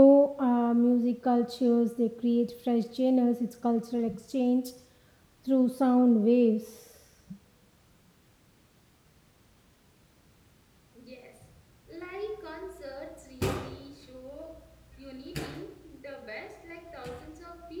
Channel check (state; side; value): identical; both; correlation 1.00